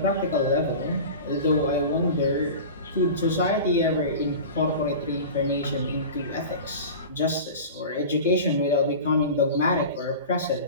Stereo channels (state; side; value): inverted; both; correlation -0.33